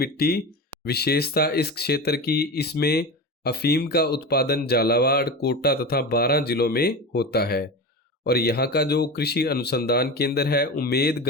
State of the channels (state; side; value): normal; both; correlation 0.25